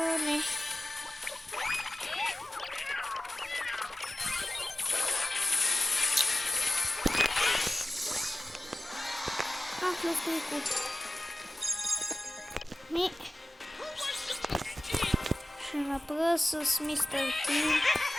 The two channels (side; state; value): both; normal; correlation 0.97